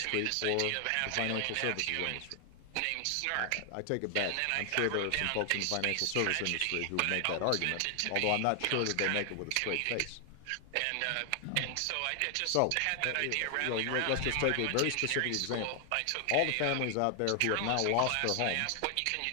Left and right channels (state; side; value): different; both; correlation 0.00